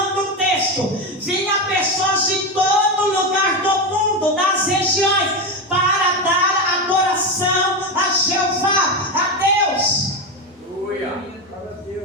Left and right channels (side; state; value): both; normal; correlation 0.14